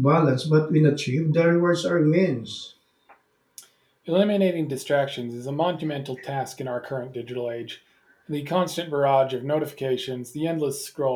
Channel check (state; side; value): identical; both; correlation 1.00